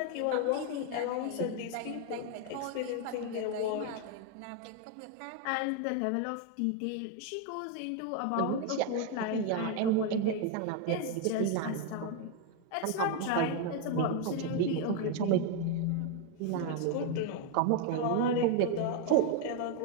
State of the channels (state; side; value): different; both; correlation 0.01